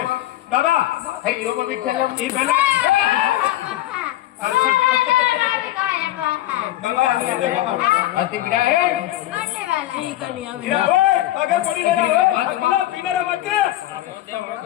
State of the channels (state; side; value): quieter; right; 14.8 dB